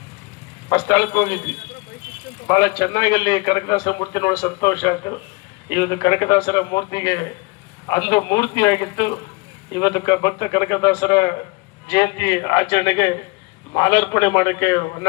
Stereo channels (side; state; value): right; quieter; 26.1 dB